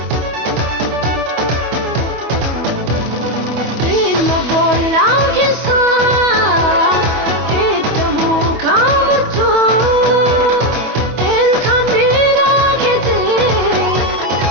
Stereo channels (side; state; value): left; late; 25 ms